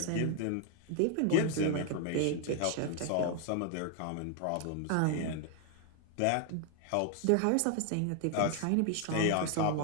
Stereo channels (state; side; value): different; both; correlation 0.00